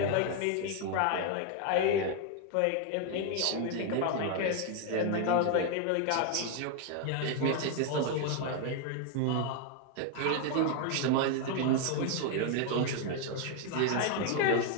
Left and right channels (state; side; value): different; both; correlation 0.01